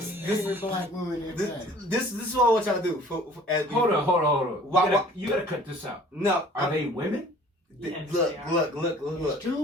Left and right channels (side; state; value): both; normal; correlation 0.51